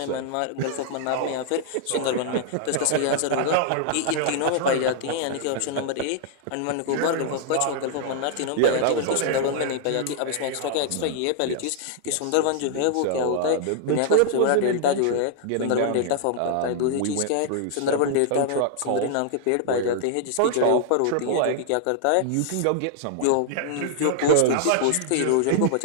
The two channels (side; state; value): both; different; correlation -0.01